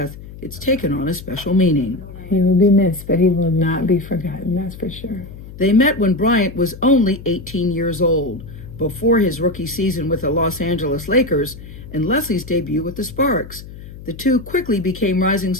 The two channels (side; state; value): left; noise; hum, 15 dB below the sound